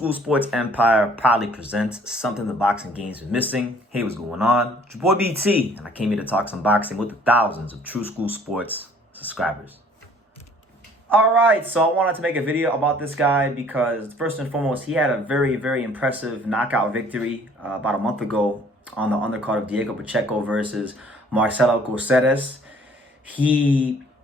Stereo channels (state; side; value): normal; both; correlation 0.57